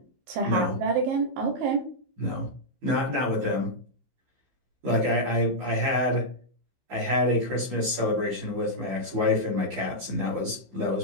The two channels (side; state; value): left; late; 15 ms